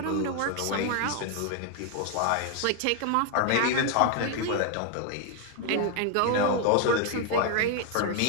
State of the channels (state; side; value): different; both; correlation 0.01